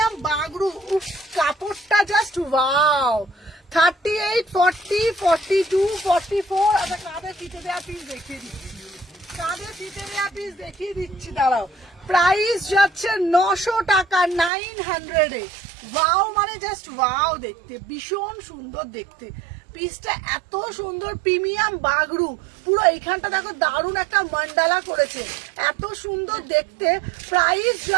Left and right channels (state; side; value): drops out; left; at 14.5 s